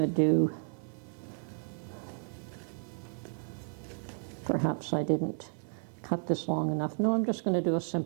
do, perhaps I didn't cut this long enough. No, I'm just going to do a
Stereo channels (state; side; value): silent; left; digital silence